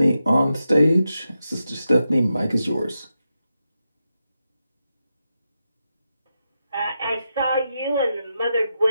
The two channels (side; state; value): both; inverted; correlation -0.88